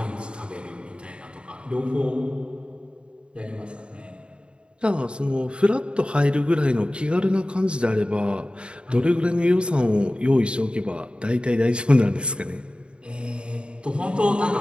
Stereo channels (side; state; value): left; late; 0.054 ms